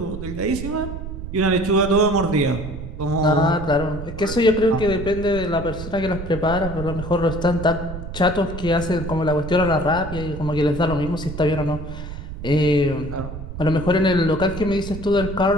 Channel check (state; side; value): noise; right; rumble, 9 dB below the sound